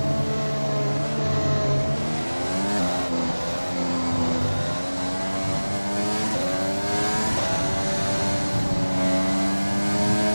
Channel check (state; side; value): inverted; both; correlation -1.00